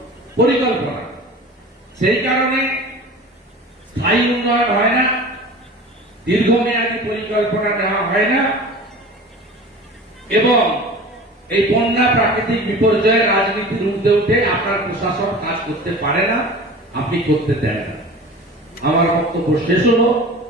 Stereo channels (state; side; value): normal; both; correlation 0.38